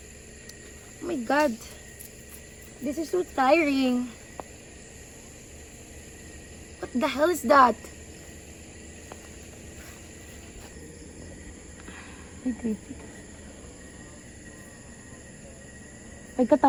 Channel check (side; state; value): both; identical; correlation 1.00